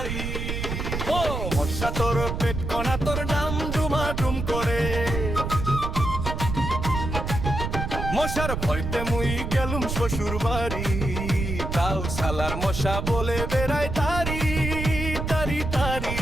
ও মশা তোর পেট কোনা তোর ডাম ডুমা ডুম করে, মশার ভয়তে মুই গেলুম শ্বশুর বাড়ি, তাও শালার মশা বলে বেড়ায় তারি তারি তারি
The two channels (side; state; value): right; noise; rumble, 4 dB below the sound